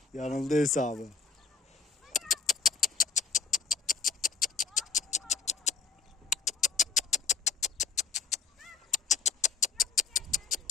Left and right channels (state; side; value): quieter; right; 5.8 dB